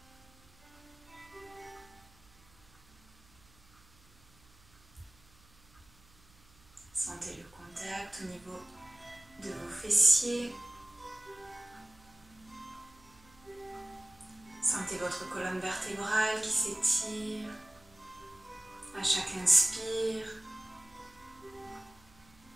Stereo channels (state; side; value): noise; right; hum, 27 dB below the sound